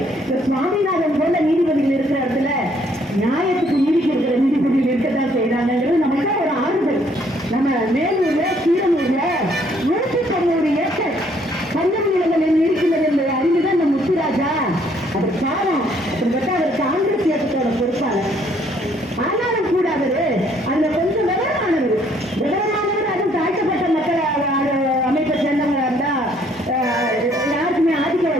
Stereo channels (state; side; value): normal; both; correlation 0.65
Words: சுவாமிநாதன் போல நீதிபதிகள் இருக்கிற இடத்துல நியாயத்துக்கு நீதிக்கு இருக்கிற நீதிபதிகள் இருக்கத்தான் செய்யறாங்கிறது நமக்கு ஒரு ஆறுதல். நம்ம மேலூர்ல கீரனூர்ல 190 ஏக்கர் பஞ்சம் நிலங்களில் இருக்கிறது என்பதை அறிந்துதான் இந்த முத்துராஜா அது காலம் அவர் காங்கிரஸ் இயக்கத்தோட பொறுப்பாளர். ஆனாலும் கூட அவரு அதுல கொஞ்சம் விவரமானவர் அதுவும் தாழ்த்தப்பட்ட மக்கள் அமைப்பை சேர்ந்தவங்களா இருந்தா யாருக்குமே